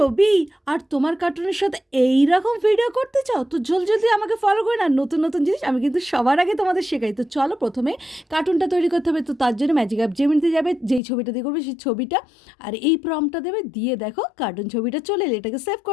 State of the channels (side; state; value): right; drops out; at 11.0 s